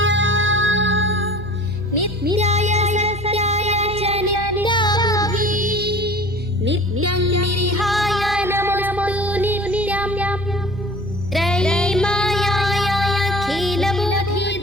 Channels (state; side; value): noise; right; hum, 12 dB below the sound